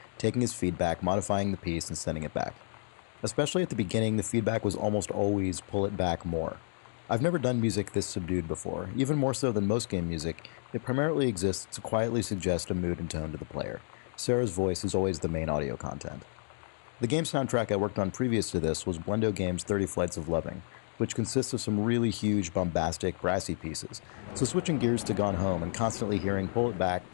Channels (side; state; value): right; silent; digital silence